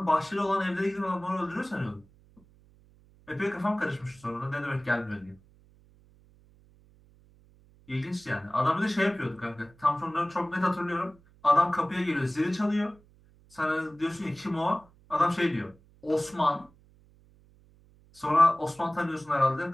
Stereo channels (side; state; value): right; noise; hum, 28 dB below the sound